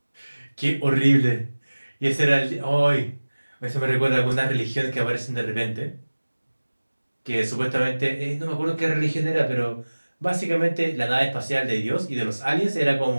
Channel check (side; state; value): both; inverted; correlation -1.00